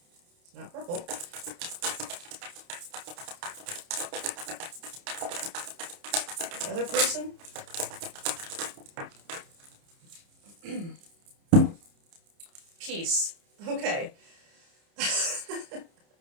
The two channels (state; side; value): late; left; 29 ms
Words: It's not purple. The other person? Peace. Okay.